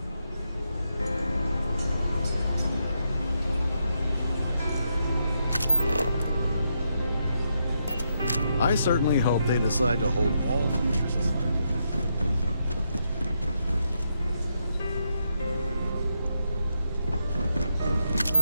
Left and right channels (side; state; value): both; inverted; correlation -0.81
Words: I I certainly hope they decide to hold all future societies.